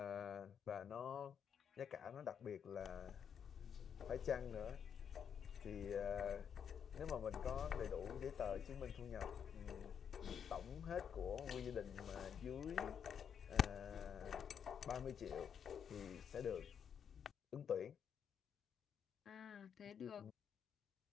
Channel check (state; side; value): quieter; right; 7.8 dB